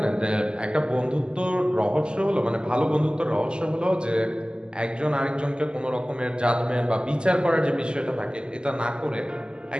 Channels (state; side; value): late; left; 0.048 ms